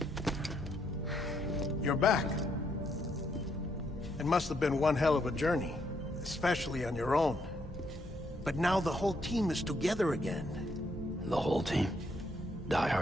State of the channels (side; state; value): both; normal; correlation 0.74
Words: You're back. It must have been one hell of a journey, especially on your own. But now the whole team is together again. The whole team? Die